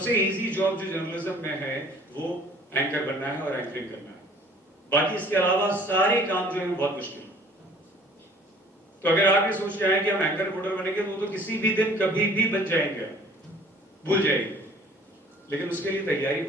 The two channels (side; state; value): both; normal; correlation 0.52